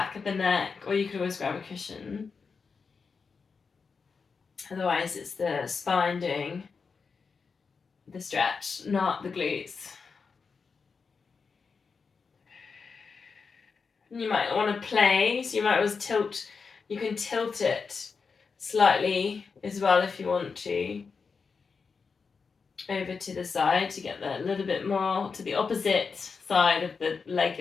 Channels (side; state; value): right; quieter; 5.2 dB